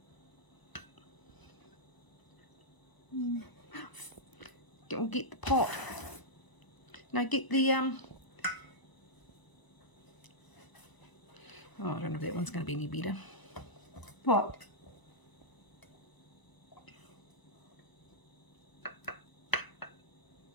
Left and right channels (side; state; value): right; late; 1.0 ms